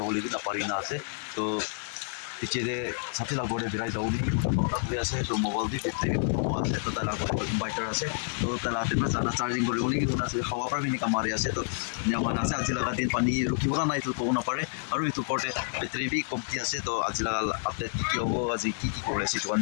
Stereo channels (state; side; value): silent; right; digital silence